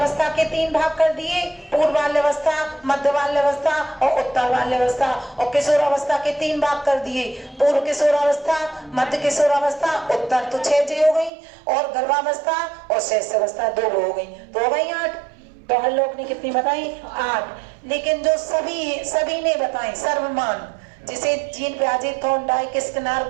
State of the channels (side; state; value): left; drops out; at 11.3 s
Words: के 3 भाग कर दिए, पूर्व बाल्यावस्था, मध्य बाल्यावस्था और उत्तर बाल्यावस्था। और किशोरावस्था के 3 भाग कर दिए, पूर्व किशोरावस्था, मध्य किशोरावस्था, उत्तर। तो 6 हो गई। और गर्भावस्था और शैशवावस्था 2 हो गई, तो हो गई 8। तो हर लोग ने कितनी बताई? 8। लेकिन जो सभी ने बताई सर्वमान, जिसे जीन पियाजे, थॉर्नडाइक, स्किनर,